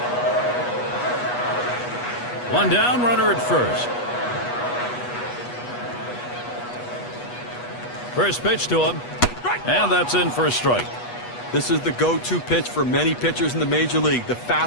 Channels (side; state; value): right; late; 8.2 ms